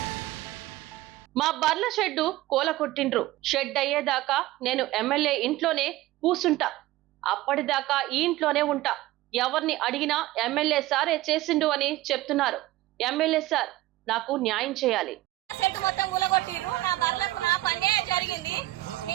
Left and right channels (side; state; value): left; quieter; 17.0 dB